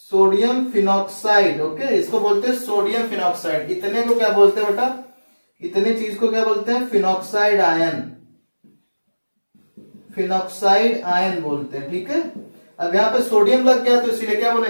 सोडियम फिनॉक्साइड। ओके, इसको बोलते हैं सोडियम फिनॉक्साइड। इतने को क्या बोलते हैं बेटा, इतनी चीज को क्या बोलते हैं, फिनॉक्साइड आयन बोलते हैं। ठीक है, अब यहाँ पे सोडियम लग गया तो इसीलिए क्या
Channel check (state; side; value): inverted; both; correlation -1.00